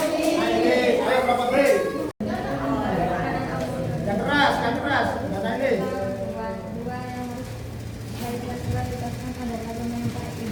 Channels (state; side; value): identical; both; correlation 1.00